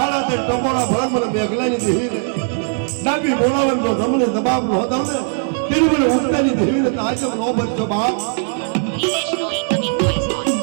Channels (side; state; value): left; silent; 64 dB below the other